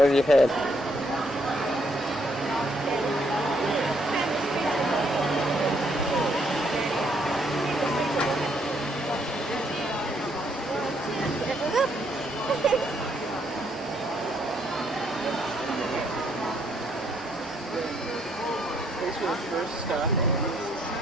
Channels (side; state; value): both; normal; correlation 0.71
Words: to your head. First stop.